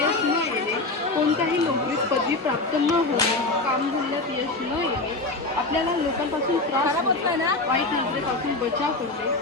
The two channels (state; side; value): quieter; right; 3.1 dB